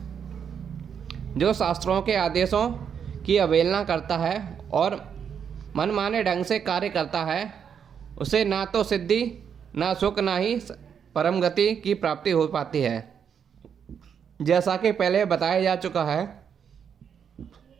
जो शास्त्रों के आदेशों की अवहेलना करता है और मनमाने ढंग से कार्य करता है उसे ना तो सिद्धि, ना सुख, ना ही परम गति की प्राप्ति हो पाती है। जैसा कि पहले बताया जा चुका है,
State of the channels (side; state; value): left; quieter; 7.6 dB